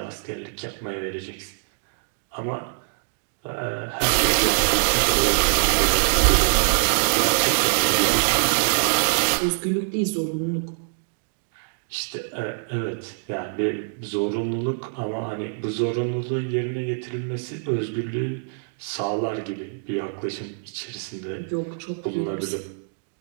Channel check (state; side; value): silent; left; digital silence